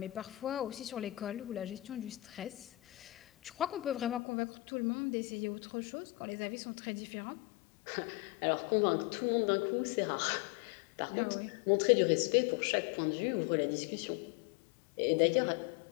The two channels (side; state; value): right; drops out; at 4.2 s